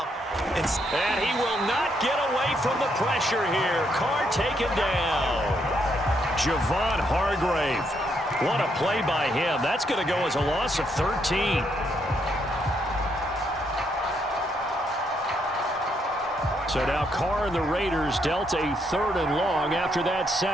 And he will not get away from the pressure here. Carr taken down. Javon Hargrave. What a play by him. That's going to go as a loss of 13. So now Carr and the Raiders dealt a 3rd and long after that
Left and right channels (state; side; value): normal; both; correlation 0.75